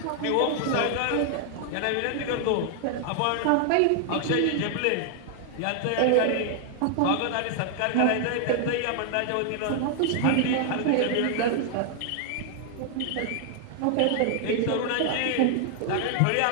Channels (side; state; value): both; different; correlation 0.00